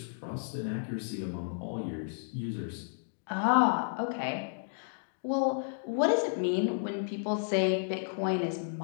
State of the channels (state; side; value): silent; right; digital silence